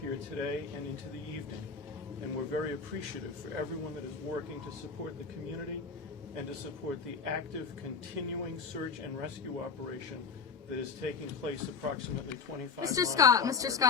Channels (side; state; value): right; quieter; 5.5 dB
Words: here today and into the evening, and we're very appreciative for everyone that is working to support the community and to support the active, continuing search and rescue operation that is taking place approximately 25 Mr.